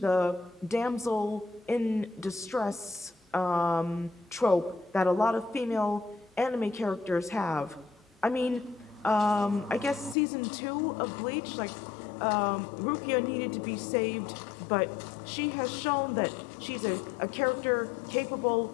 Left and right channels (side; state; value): right; drops out; at 10.2 s